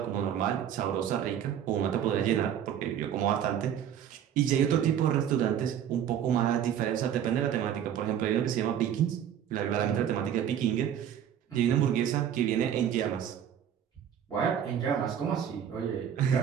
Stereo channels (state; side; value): quieter; left; 9.5 dB